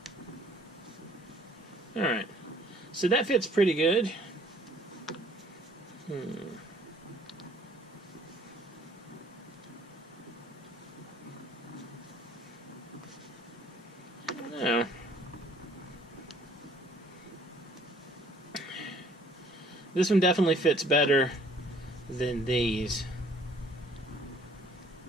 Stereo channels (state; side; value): normal; both; correlation 0.58